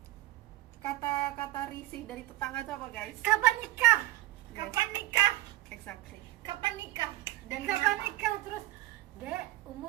kata-kata risih dari tetangga itu apa guys? Kapan nikah? Yes. Kapan nikah? Exactly. Kapan nikah? Dan Kapan kenapa? nikah? Terus Dek,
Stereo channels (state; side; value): quieter; left; 17.0 dB